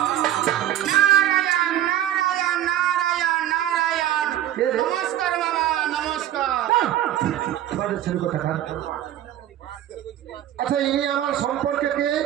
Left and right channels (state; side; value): quieter; left; 12.1 dB